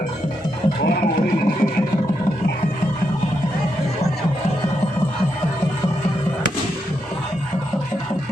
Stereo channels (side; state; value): both; normal; correlation 0.82